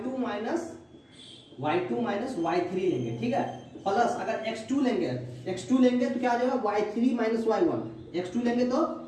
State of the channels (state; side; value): identical; both; correlation 1.00